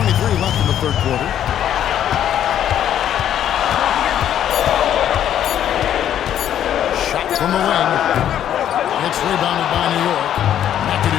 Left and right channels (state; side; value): quieter; right; 10.5 dB